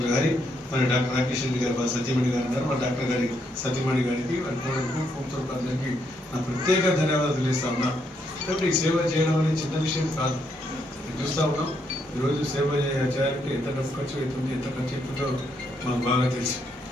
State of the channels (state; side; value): normal; both; correlation 0.76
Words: గారి మన డాక్టర్ రాకేష్ రెడ్డి గారు మన సత్యమణి గారు ఉన్నారు. మన డాక్టర్ గారి సత్యమణి గారికి అందరికీ నా ప్రత్యేక ధన్యవాదాలు తెలియజేస్తా ఉన్నా. కాబట్టి సేవ చేయడం అనేది చిన్న విషయం కాదు. చూస్తూ ఉన్నాం ఈరోజు సేవ చేయాలంటే ఎంత డబ్బు ఖర్చు అవుతుంది, ఎంత ఖర్చు అవుతుందో మాకు బాగా తెలుసు.